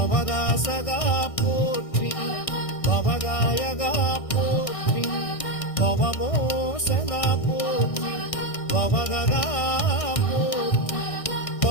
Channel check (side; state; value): right; late; 1.6 ms